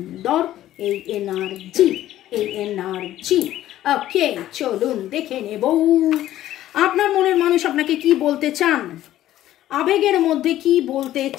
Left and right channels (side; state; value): right; quieter; 13.5 dB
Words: এই এনার্জি, এই এনার্জি। ওকে, চলুন দেখে নেব আপনার মনের মানুষ আপনাকে কি বলতে চান, আবেগের মধ্যে কি বলতে